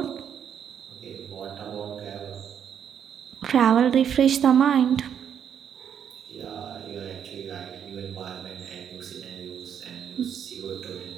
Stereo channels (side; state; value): left; quieter; 8.5 dB